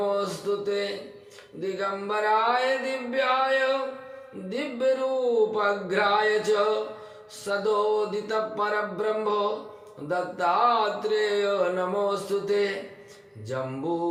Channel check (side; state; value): both; identical; correlation 1.00